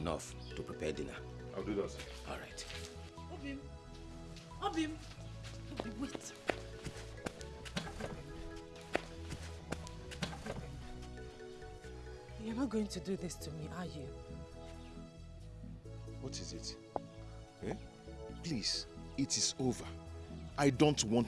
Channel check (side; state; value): both; identical; correlation 1.00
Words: to prepare dinner. I'll do that. All right. Obim. Obim. Obim, wait. You're not going to do this to me, are you? What is it? Eh? Please, it is over. I don't